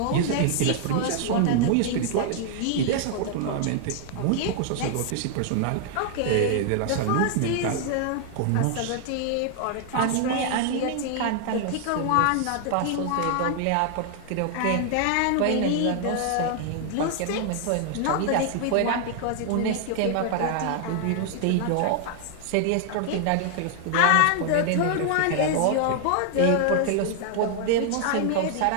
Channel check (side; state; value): both; different; correlation 0.00